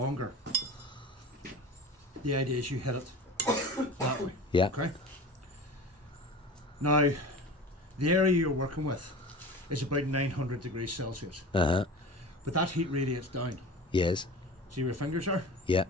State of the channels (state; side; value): normal; both; correlation 0.35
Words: the idea is you hit it that way. Yeah. Okay. Now, the area you're working with is about 900 degrees Celsius, Uh-huh. but that heat radiates down. Yes. See where your fingers are? Yeah.